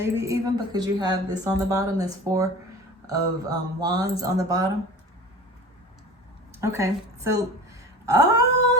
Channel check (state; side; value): normal; both; correlation 0.37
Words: even, because you have this on the bottom, this Four of Wands on the bottom. Okay, so,